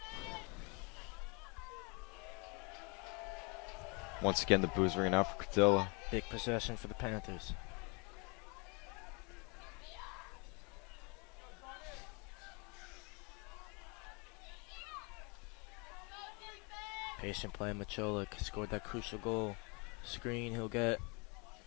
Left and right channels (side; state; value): right; quieter; 31.3 dB